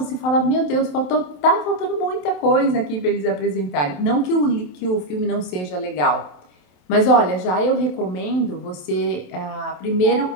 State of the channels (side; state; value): right; late; 27 ms